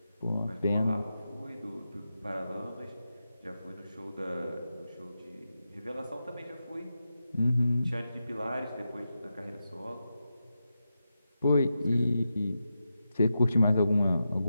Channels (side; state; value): both; inverted; correlation -0.89